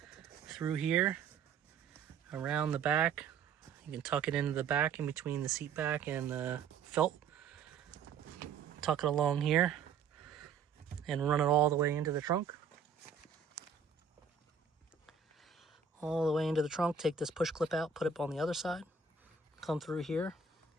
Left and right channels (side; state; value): left; quieter; 6.1 dB